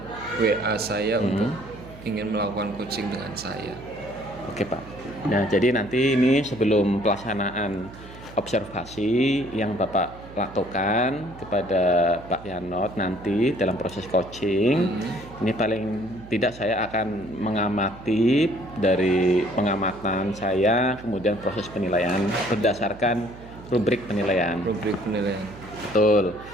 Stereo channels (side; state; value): right; noise; hum, 17 dB below the sound